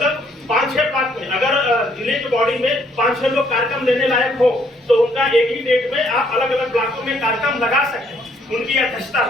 5-6 ब्लॉक में, अगर जिले की बॉडी में 5-6 लोग कार्यक्रम लेने लायक हो तो उनका एक ही डेट में आप अलग अलग ब्लॉकों में कार्यक्रम लगा सकते हैं उनकी अध्यक्षता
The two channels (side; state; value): both; normal; correlation 0.67